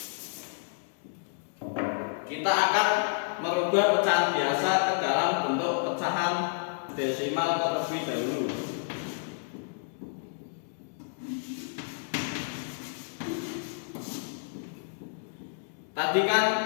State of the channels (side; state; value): right; silent; digital silence